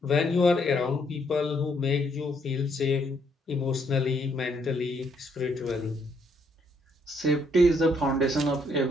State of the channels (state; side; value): normal; both; correlation 0.71